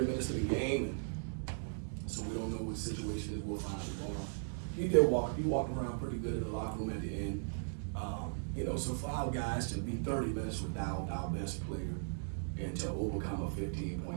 minutes of the game, and so we don't know what situation is. We'll find out tomorrow. He walked around pretty good in the locker room at the end. So for our guys to be 30 minutes without our best player and to overcome a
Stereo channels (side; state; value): left; silent; digital silence